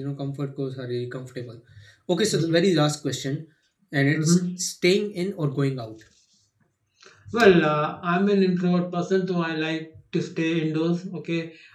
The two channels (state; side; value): identical; both; correlation 1.00